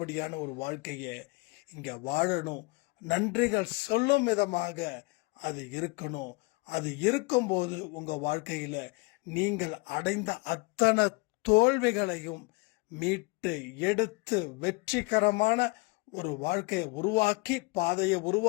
ஒரு வாழ்க்கையை இங்க வாழணும். நன்றிகள் சொல்லும் விதமாக அது இருக்கணும். அது இருக்கும்போது உங்க வாழ்க்கையில நீங்கள் அடைந்த அத்தனை தோல்விகளையும் மீட்டு எடுத்து வெற்றிகரமான ஒரு வாழ்க்கையை உருவாக்கி, பாதையை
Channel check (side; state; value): right; quieter; 26.2 dB